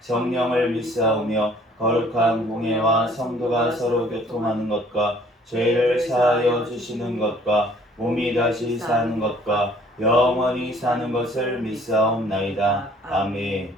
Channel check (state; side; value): normal; both; correlation 0.56